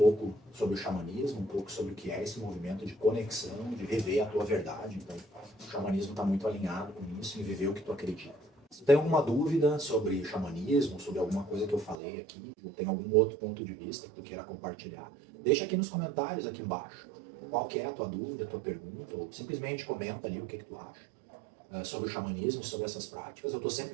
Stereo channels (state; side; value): drops out; left; at 12.0 s